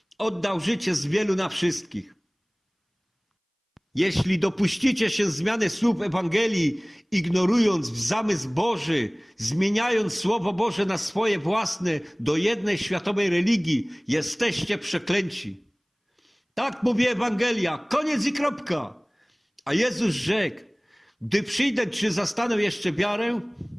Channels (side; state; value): both; identical; correlation 1.00